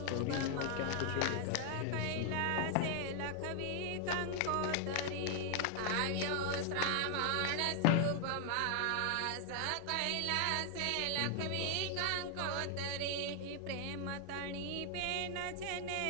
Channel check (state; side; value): different; both; correlation 0.00